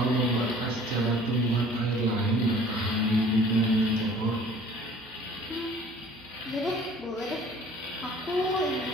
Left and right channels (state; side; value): noise; right; hum, 27 dB below the sound